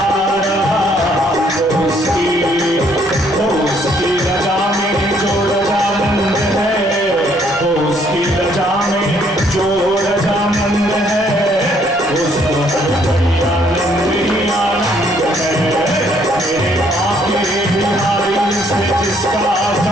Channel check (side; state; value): both; normal; correlation 0.66